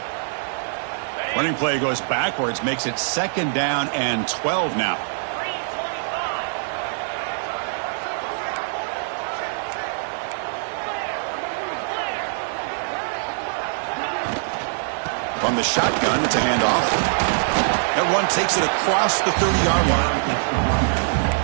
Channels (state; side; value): silent; left; digital silence